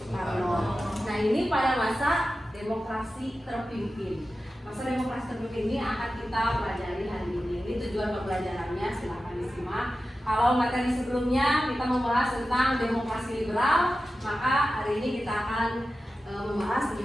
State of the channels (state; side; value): normal; both; correlation 0.93